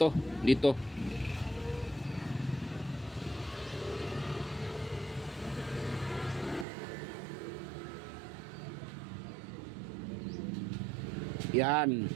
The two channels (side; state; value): left; drops out; at 6.7 s